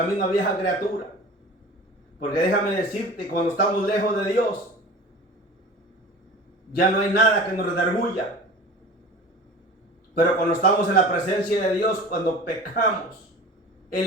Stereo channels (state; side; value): normal; both; correlation 0.39